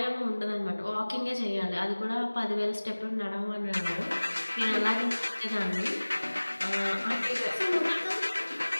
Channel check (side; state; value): both; inverted; correlation -1.00